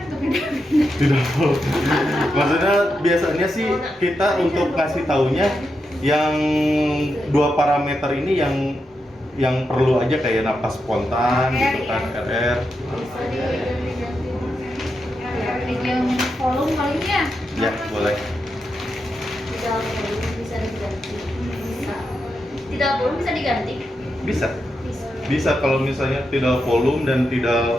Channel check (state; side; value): normal; both; correlation 0.86